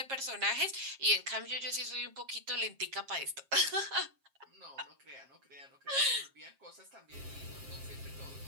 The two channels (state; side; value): late; left; 7.4 ms